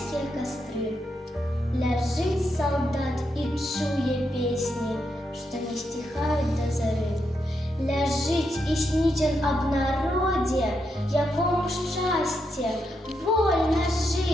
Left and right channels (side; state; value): both; normal; correlation 0.82